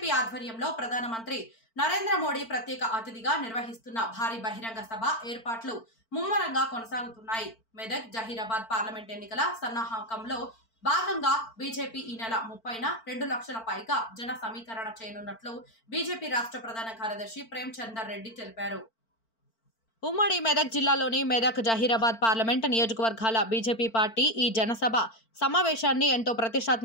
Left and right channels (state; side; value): late; right; 4.4 ms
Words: ఆధ్వర్యంలో ప్రధానమంత్రి నరేంద్ర మోడీ ప్రత్యేక అతిథిగా నిర్వహిస్తున్న భారీ బహిరంగ సభ ఏర్పాట్లు ముమ్మరంగా కొనసాగుతున్నాయి. మెదక్ జహీరాబాద్ పార్లమెంట్ ఎన్నికల సన్నాహకంలో భాగంగా బీజేపీ ఈ నెల 30న 2 లక్షల పైగా జన సమీకరణ చేయనున్నట్లు బీజేపీ రాష్ట్ర ప్రధాన కార్యదర్శి ప్రేమ్ చందర్ రెడ్డి తెలిపారు. ఉమ్మడి మెదక్ జిల్లాలోని మెదక్ జహీరాబాద్ పార్లమెంట్ నియోజకవర్గాల బీజేపీ పార్టీ ఈ జనసభ సమావేశాన్ని ఎంతో